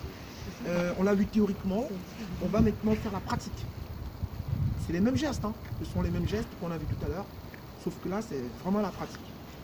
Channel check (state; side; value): identical; both; correlation 1.00